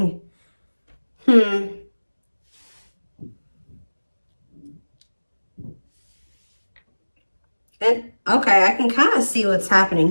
And, okay, I can kind of see what's happening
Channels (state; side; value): inverted; both; correlation -1.00